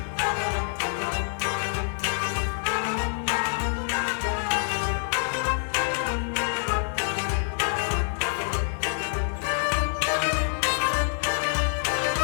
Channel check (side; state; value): right; silent; 61 dB below the other